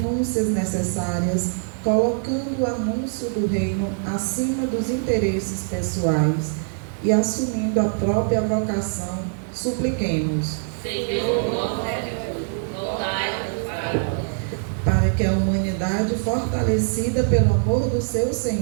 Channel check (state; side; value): silent; left; 63 dB below the other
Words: necessárias, colocando o anúncio do reino acima dos interesses pessoais e assumindo a própria vocação, supliquemos. Senhor, nosso refúgio, voltai-vos para nós. Para que a humanidade, fortalecida pelo amor do seu